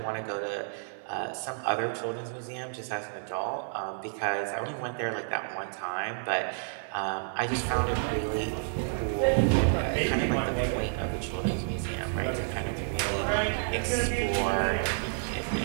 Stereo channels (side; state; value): left; silent; digital silence